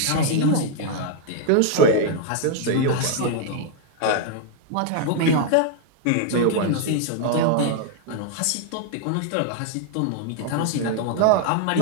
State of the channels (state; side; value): different; both; correlation 0.00